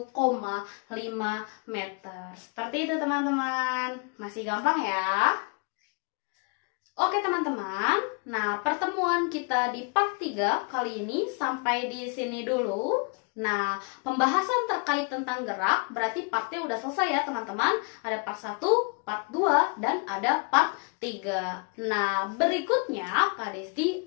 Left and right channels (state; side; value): quieter; right; 36.0 dB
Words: meter. Seperti itu teman-teman. Masih gampang ya? Oke teman-teman. Nah, pertemuan kita di part 3 kali ini sampai di sini dulu. Nah, pembahasan terkait tentang gerak berarti partnya udah selesai ya teman-teman. Ada part 1, part 2, dan ada part 3. Nah, berikutnya Kak